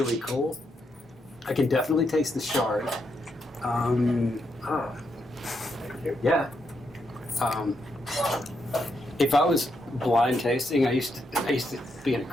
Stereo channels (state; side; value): normal; both; correlation 0.80